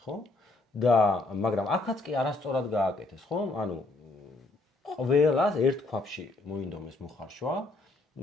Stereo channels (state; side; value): quieter; right; 3.1 dB